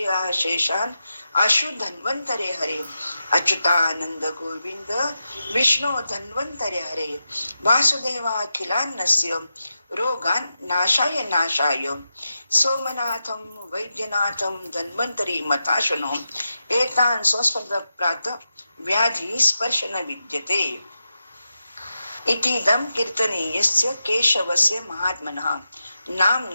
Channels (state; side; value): inverted; both; correlation -0.89